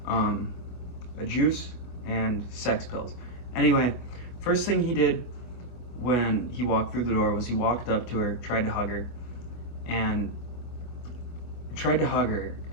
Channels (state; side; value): late; right; 24 ms